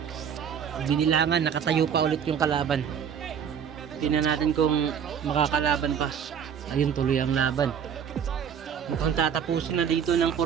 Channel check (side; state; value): left; quieter; 7.9 dB